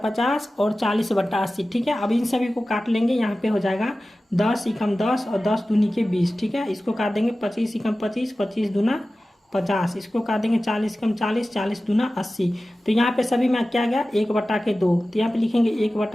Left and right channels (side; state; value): both; normal; correlation 0.96